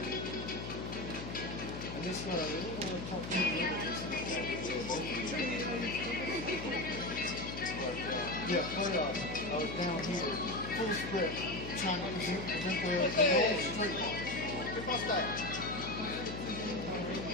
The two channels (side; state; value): left; noise; hum, 8 dB below the sound